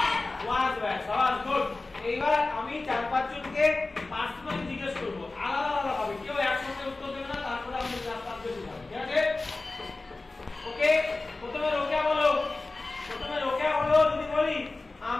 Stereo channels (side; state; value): right; quieter; 3.3 dB